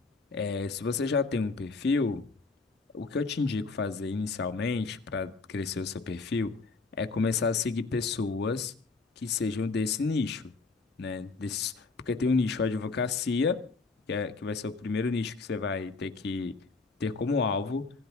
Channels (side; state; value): right; quieter; 4.0 dB